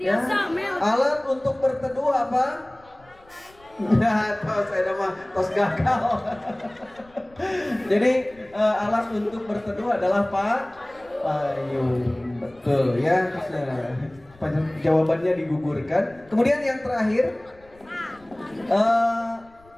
Alat untuk berteduh apa? Nah, tos ada mah tos gagal. Jadi alat untuk berteduh adalah payung. Betul ya. Nah, jawabannya digugurkan. Kemudian yang terakhir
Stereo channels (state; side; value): noise; left; rumble, 28 dB below the sound